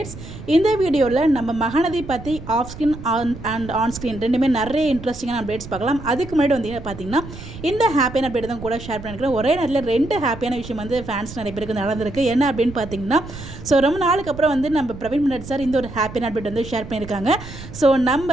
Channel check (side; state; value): right; noise; rumble, 13 dB below the sound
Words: இந்த வீடியோவில் நம்ம மகாநதி பற்றி off screen and on screen ரெண்டுமே நிறைய இன்ட்ரெஸ்டிங்கான அப்டேட்ஸ் பார்க்கலாம். அதுக்கு முன்னாடி வந்து பார்த்தீங்கன்னா இந்த ஹாப்பியான அப்டேட் தான் கூட ஷேர் பண்ணியிருக்கிறேன். ஒரே நேரத்தில் ரெண்டு ஹாப்பியான விஷயம் வந்து ஃபேன்ஸ் நிறைய பேருக்கு நடந்திருக்கு. என்ன அப்படின்னு பார்த்தீங்கன்னா, ரொம்ப நாளுக்கு அப்புறம் வந்து நம்ம பிரவீன் மன்னட் சார் இந்த ஒரு ஹாப்பியான அப்டேட் வந்து ஷேர் பண்ணியிருக்காங்க.